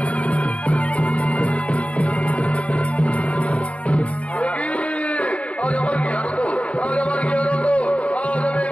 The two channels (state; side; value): late; right; 0.064 ms